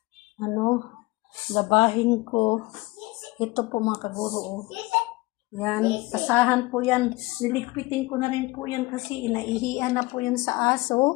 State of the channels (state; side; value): quieter; right; 21.7 dB